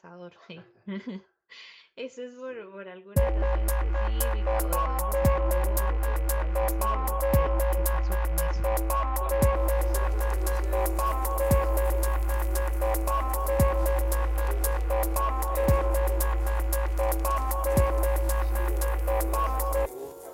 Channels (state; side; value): identical; both; correlation 1.00